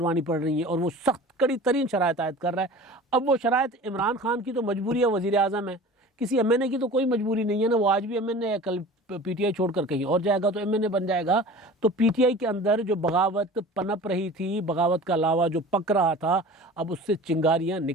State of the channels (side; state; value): both; normal; correlation 0.40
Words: पड़ रही हैं और वो सख्त कड़ी तरीन शराइत आयद कर रहा है। अब वो शराइत इमरान खान की तो मजबूरी है, वज़ीर आज़म है, किसी MNA की तो कोई मजबूरी नहीं है ना। वो आज भी MNA है, कल PTI छोड़कर कहीं और जाएगा तो MNA बन जाएगा। तो PTI के अंदर जो बगावत पनप रही थी, बगावत का लावा जो पक रहा था, अब उससे चिंगारियाँ